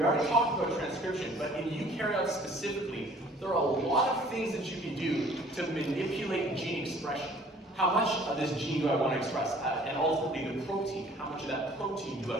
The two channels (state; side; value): normal; both; correlation 0.54